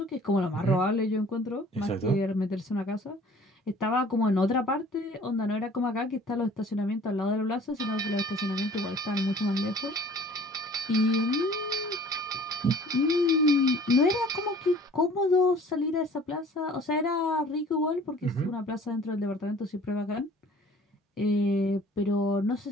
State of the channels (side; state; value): both; normal; correlation 0.50